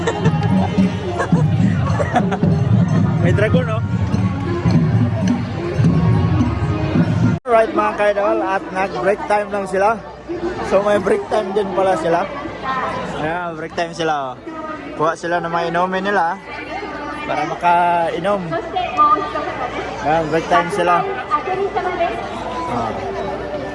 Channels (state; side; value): identical; both; correlation 1.00